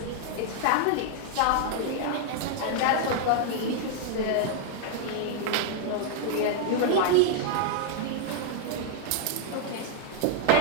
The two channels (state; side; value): different; both; correlation -0.01